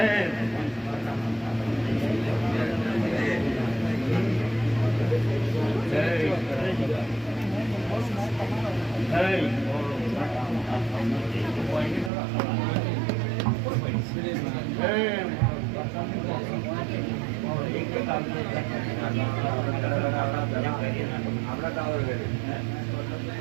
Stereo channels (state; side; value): drops out; left; at 12.1 s